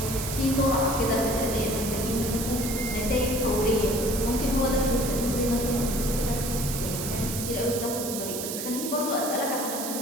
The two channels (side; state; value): right; noise; hiss, 5 dB below the sound